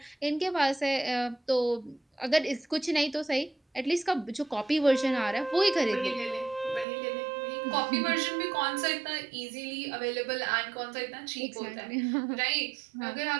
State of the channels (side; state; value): left; drops out; at 6.9 s